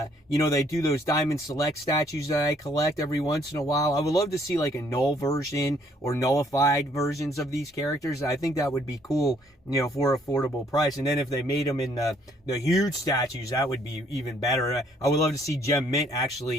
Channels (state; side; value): normal; both; correlation 0.65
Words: know, they do those Diamond Select statues that I collect every once in a while. I would love to see like a null version or nullified versions of these characters. I think that would be cool, you know, for affordable price. And then if they made them in the huge statues, that would be even better. I would love to see Gem Mint